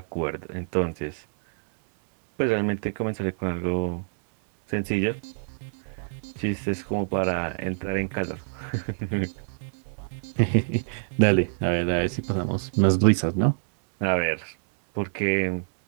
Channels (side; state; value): left; silent; 61 dB below the other